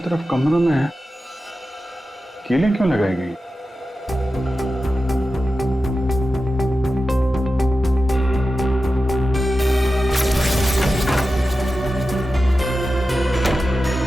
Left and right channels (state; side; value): normal; both; correlation 0.93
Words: कमरों में है, कीलें क्यों लगाई गई?